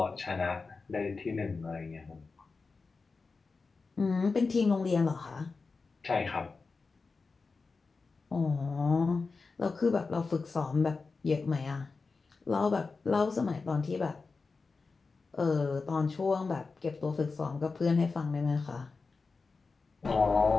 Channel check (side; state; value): right; quieter; 4.3 dB